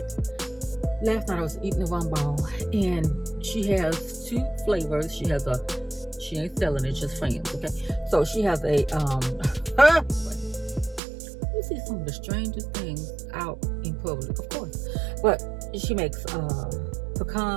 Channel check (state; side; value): drops out; left; at 11.0 s